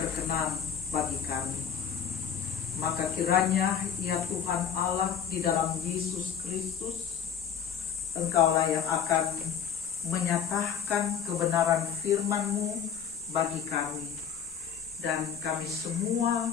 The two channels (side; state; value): right; quieter; 8.0 dB